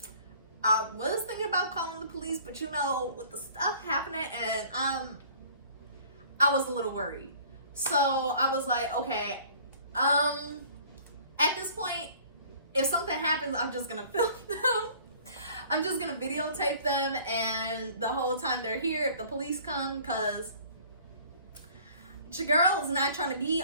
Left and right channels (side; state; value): both; inverted; correlation -0.51